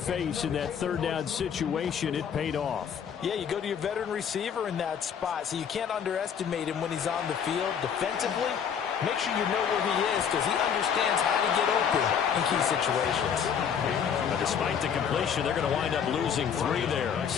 in that 3rd down situation. It paid off. Yeah, you go to your veteran receiver in that spot, so you can't underestimate him when he's on the field defensively. Make sure you know where he is because he understands how to get open in key situations. But despite the completion, they're going to wind up losing 3 there.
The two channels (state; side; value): quieter; right; 7.7 dB